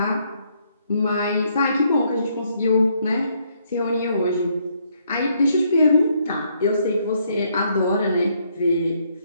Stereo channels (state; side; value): inverted; both; correlation -0.71